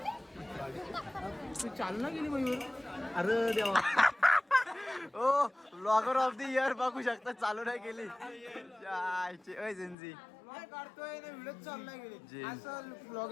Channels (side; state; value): right; drops out; at 10.0 s